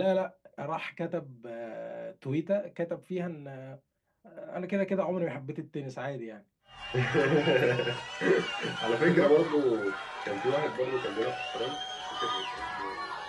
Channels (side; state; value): both; identical; correlation 1.00